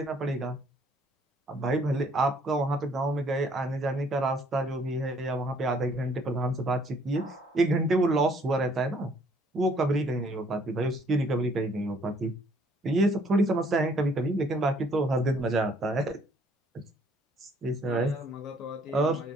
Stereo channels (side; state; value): both; normal; correlation 0.63